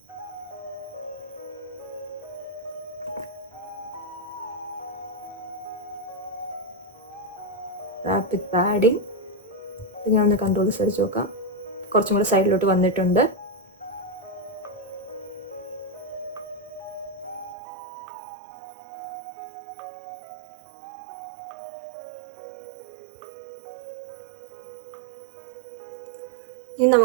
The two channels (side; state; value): left; drops out; at 17.6 s